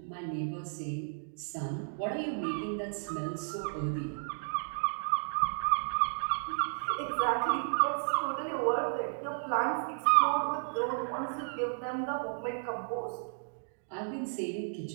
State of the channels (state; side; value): silent; left; digital silence